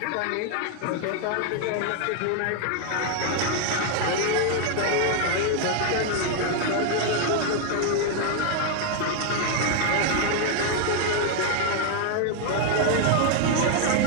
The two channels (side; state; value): both; different; correlation 0.00